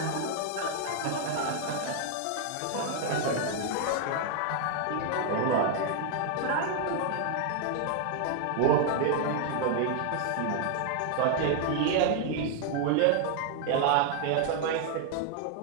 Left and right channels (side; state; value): both; different; correlation 0.00